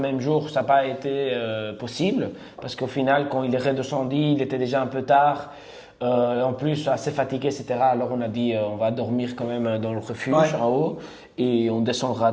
jour, ça n'a pas été possible parce qu'au final, quand il est redescendu, il était déjà un peu tard. En plus, assez fatigué, etc. Alors on a dit on va dormir quand même dans le refuge en haut et on descendra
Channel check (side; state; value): both; identical; correlation 1.00